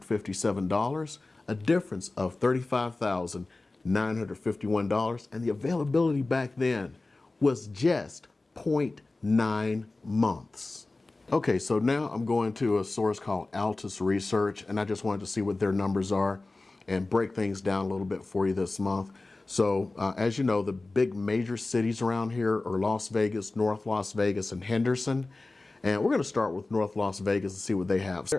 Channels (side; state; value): right; quieter; 3.2 dB